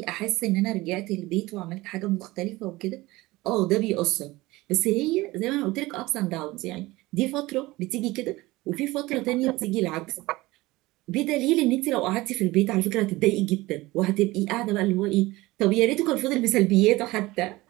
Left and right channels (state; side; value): quieter; left; 19.9 dB